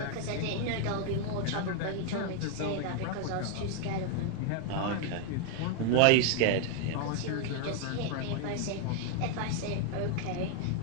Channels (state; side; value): different; both; correlation 0.00